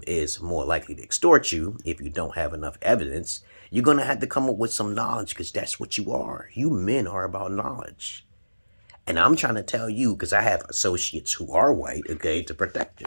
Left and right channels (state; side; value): inverted; both; correlation -1.00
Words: is more likely to extort you if you don't have enough evidence, you're going to have to come up with some knowledge, because that's what you are. You men are about knowledge. And I'm trying to tell you, because I have associates who are white, okay, to protect